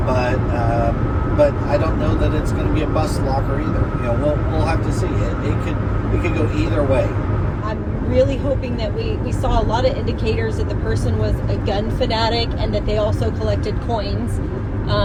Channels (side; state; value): both; identical; correlation 1.00